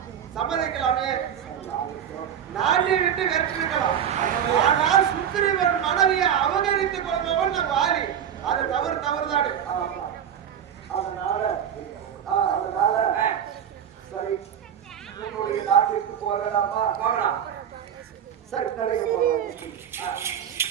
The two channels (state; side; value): quieter; left; 9.0 dB